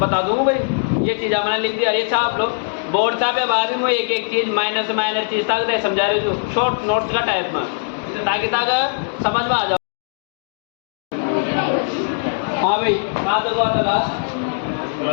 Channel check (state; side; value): silent; right; digital silence